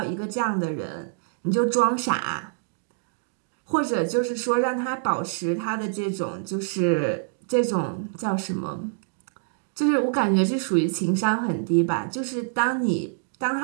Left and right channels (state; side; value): silent; left; digital silence